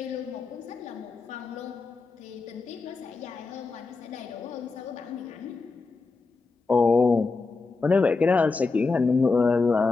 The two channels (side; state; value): right; quieter; 4.1 dB